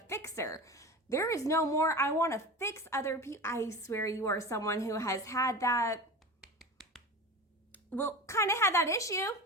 fixer. There is no more, I want to fix other people. I swear you are someone who has had that, well, kind of had that issue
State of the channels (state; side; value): normal; both; correlation 0.30